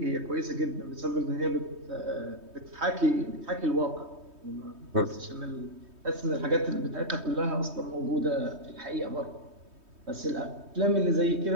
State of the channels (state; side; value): late; left; 3.2 ms